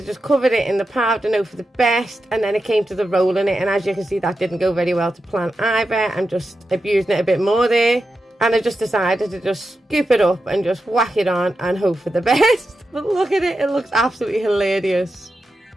just cover it in the powder, know for the best. And then it came to the rolling it. And as you can see, that didn't go very well to plan either. I'm just abusing it a bit more there. And I just decided to just scoop it up and just whack it on and hope for the best. But look at it. It looks absolutely hilarious.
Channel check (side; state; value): both; normal; correlation 0.89